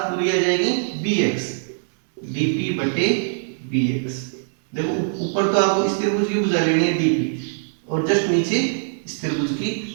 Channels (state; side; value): silent; left; digital silence